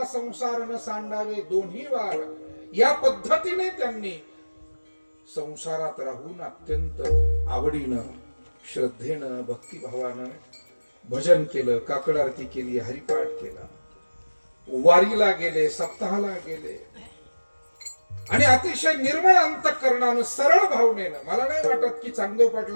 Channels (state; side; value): inverted; both; correlation -1.00